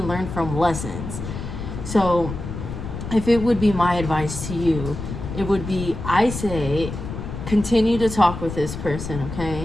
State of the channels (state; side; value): noise; left; rumble, 7 dB below the sound